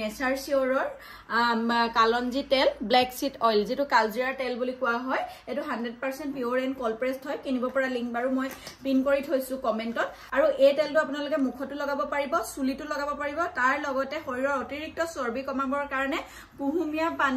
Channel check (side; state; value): both; identical; correlation 1.00